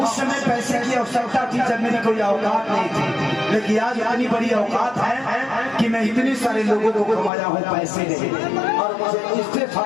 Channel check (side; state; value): right; drops out; at 7.3 s